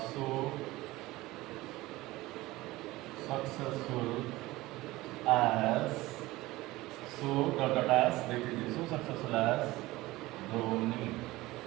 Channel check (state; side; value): quieter; left; 19.0 dB